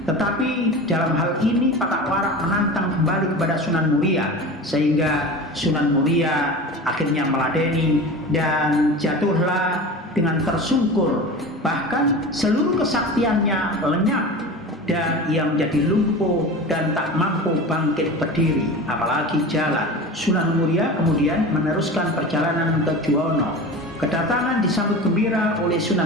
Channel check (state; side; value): normal; both; correlation 0.32